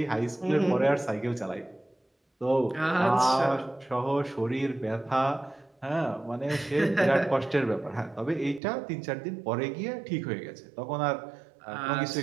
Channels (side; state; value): left; drops out; at 8.6 s